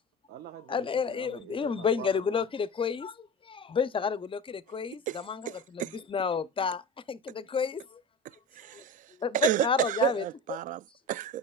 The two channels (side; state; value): both; normal; correlation 0.32